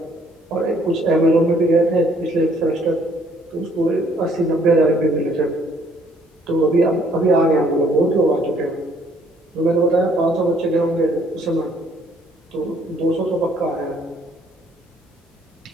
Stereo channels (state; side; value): normal; both; correlation 0.63